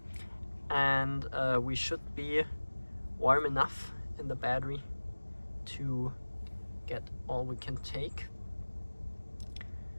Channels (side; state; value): both; inverted; correlation -1.00